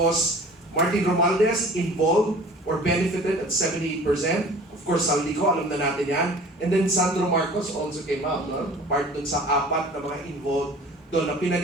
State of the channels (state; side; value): normal; both; correlation 0.45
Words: Martin Romualdez, involved or benefited at 78%. Of course, Saldico, alam na natin yan. And then Sandro Marcos also came out, no? Part dun sa 4 na mga involved doon na